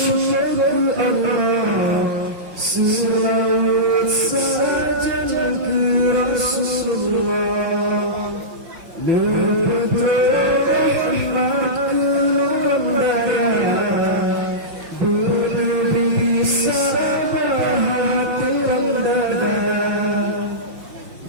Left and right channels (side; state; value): left; late; 6.0 ms